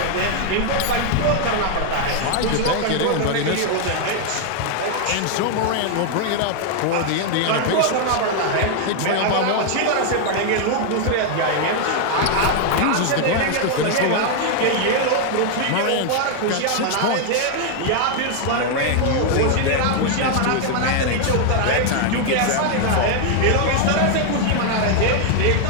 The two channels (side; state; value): both; different; correlation 0.00